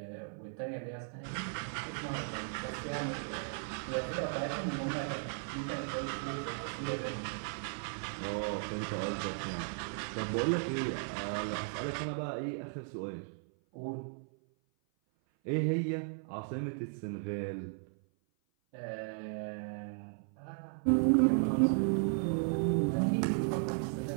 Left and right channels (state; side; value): silent; left; 54 dB below the other